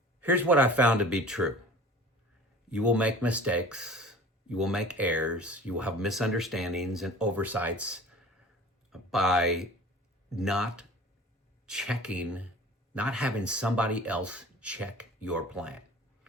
Here's what I found to be true. You will make mistakes. You will make errors. You will have misunderstandings and oversights by not checking, not having somebody else check your plan.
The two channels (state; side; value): normal; both; correlation 0.43